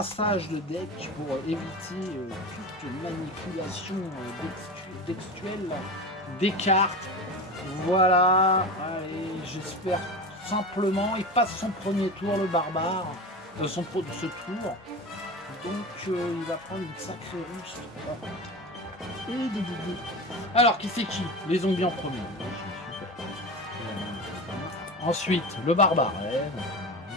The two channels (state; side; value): normal; both; correlation 0.27